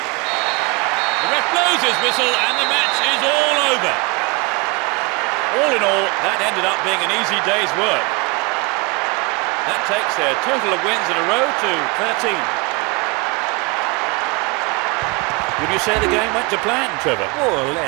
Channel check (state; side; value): quieter; left; 27.6 dB